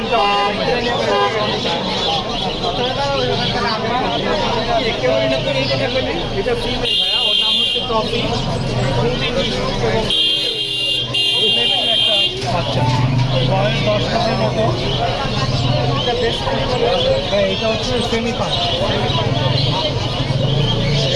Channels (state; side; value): identical; both; correlation 1.00